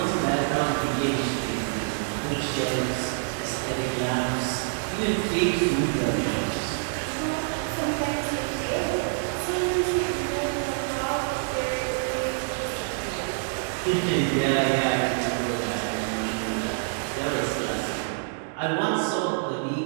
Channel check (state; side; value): silent; left; digital silence